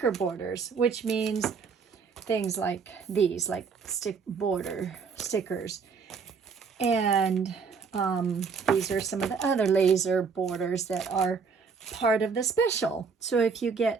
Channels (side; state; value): left; quieter; 5.5 dB